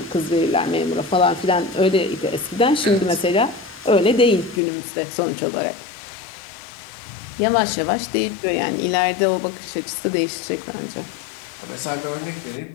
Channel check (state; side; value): drops out; right; at 4.6 s